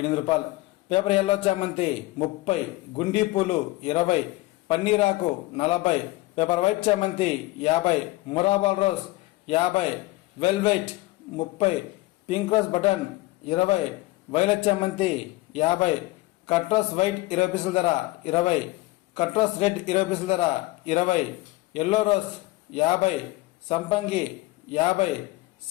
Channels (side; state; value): right; quieter; 19.7 dB